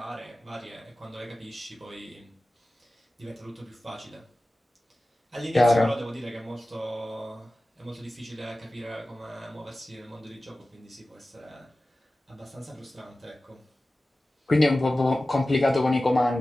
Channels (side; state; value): both; normal; correlation 0.96